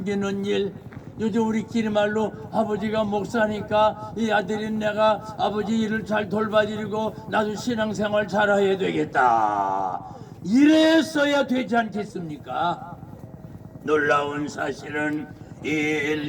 일, 요즘 우리끼리 말로 아버지가 목사니까 이 아들인 내가 아버지 일을 잘 돌봐드리고 나도 신앙생활 잘해야 되겠다, 이랬어야 되지 않겠습니까? 놀라운 사실은 이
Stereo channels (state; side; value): identical; both; correlation 1.00